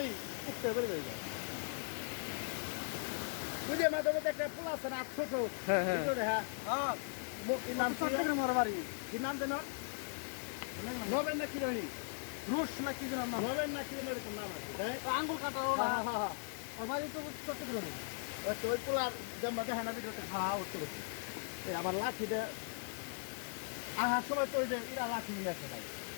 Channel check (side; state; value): right; silent; digital silence